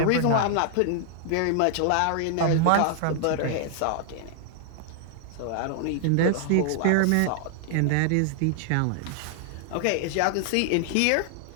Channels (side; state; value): both; different; correlation 0.00